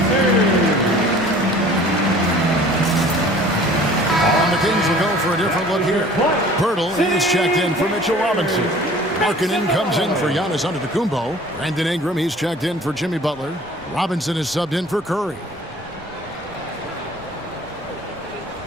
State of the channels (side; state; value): both; normal; correlation 0.49